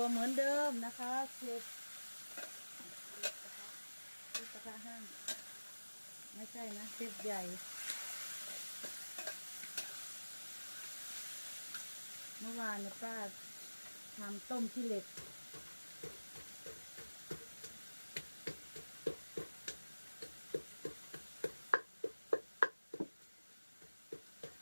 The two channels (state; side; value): inverted; both; correlation -1.00